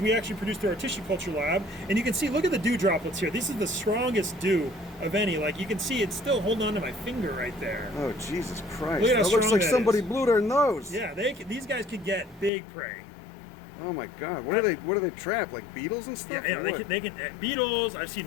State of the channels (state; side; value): drops out; right; at 12.5 s